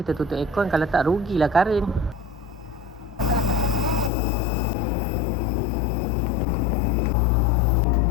tutup aircon. Kalau tak, rugilah Karin.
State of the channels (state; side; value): drops out; right; at 4.1 s